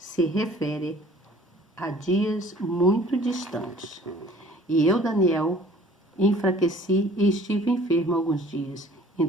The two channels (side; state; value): both; normal; correlation 0.52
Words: refere a dias muito distantes. E eu, Daniel, enfraqueci e estive enfermo alguns dias.